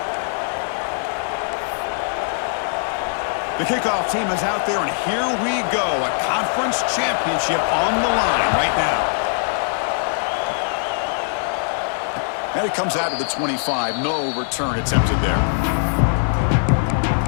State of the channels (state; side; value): silent; right; digital silence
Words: The kickoff team is out there, and here we go. A conference championship on the line right now. And it comes out of the 25. No return attempted there.